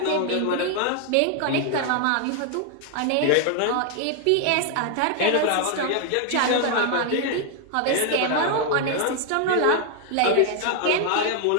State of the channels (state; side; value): different; both; correlation 0.00